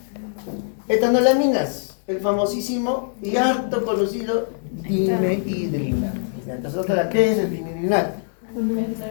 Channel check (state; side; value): silent; right; digital silence